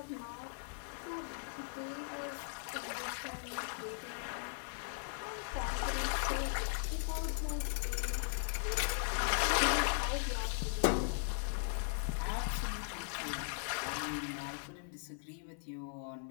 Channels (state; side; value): silent; right; 52 dB below the other